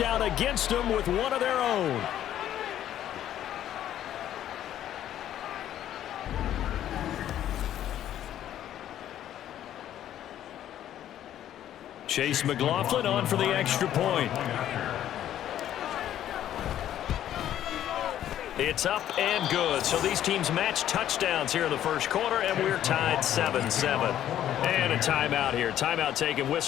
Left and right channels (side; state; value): right; quieter; 11.5 dB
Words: against them with one of their own. Chase McLaughlin on for the extra point. It's up and good. So these teams match touchdowns here in the first quarter, and we're tied 7-7. And a timeout here. Timeout taken,